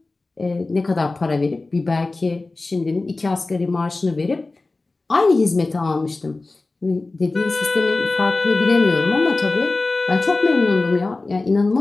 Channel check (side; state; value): right; quieter; 3.3 dB